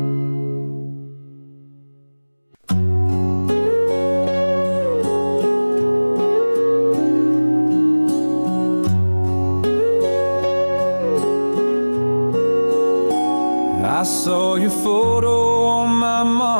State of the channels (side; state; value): both; inverted; correlation -1.00